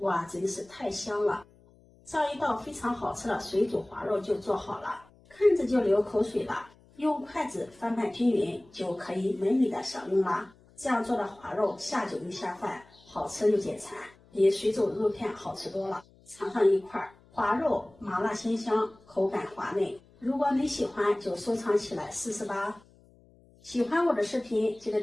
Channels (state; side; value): noise; left; hum, 28 dB below the sound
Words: 真是太香了！這樣一道非常好吃的水煮花肉就做好了，看着就流口水了。用筷子翻拌均勻，就可以美美的享用了。這樣做的花肉下酒又下飯，好吃又解饞，比水煮肉片好吃多了。嘗上一塊花肉，麻辣鮮香，口感滑嫩。如果你喜歡，就收藏起來試試吧。喜歡我的視頻，記得